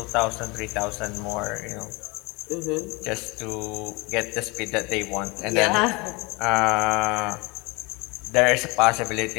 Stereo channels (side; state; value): right; quieter; 26.1 dB